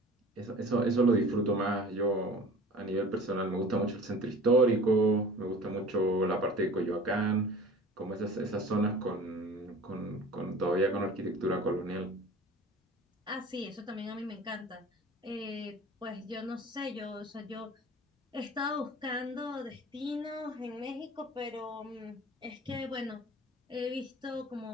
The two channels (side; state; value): both; normal; correlation 0.43